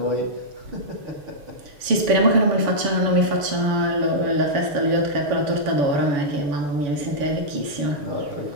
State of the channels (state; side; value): late; left; 7.1 ms